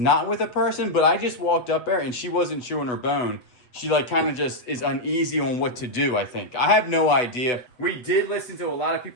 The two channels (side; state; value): right; late; 8.0 ms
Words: with a person, but I just walked up there and she wasn't chewing her bone. She like kind of just is uneasy on what to do, I think. I have no idea. We did listen to a lot of